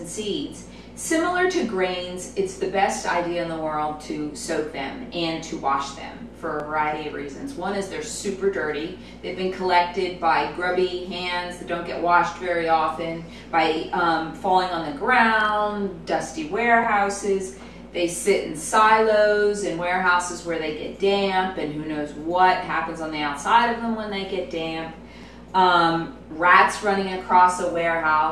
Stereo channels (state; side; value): identical; both; correlation 1.00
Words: seeds. Similar to grains, it's the best idea in the world to soak them and to wash them for a variety of reasons. One is they're super dirty. They've been collected by grubby hands that don't get washed very often, by falling on the ground, dusty warehouses. They sit in silos in warehouses where they get damp, and who knows what happens on the outside of them when they get damp. Rats running across a